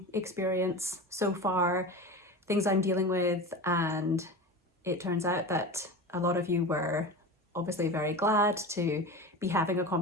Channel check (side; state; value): both; normal; correlation 0.29